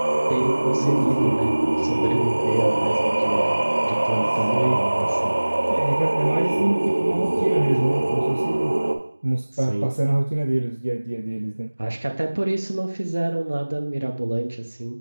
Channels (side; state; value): both; inverted; correlation -1.00